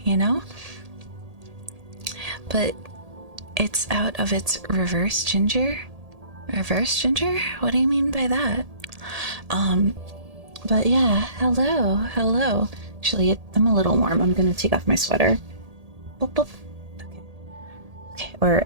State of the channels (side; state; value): left; late; 1.8 ms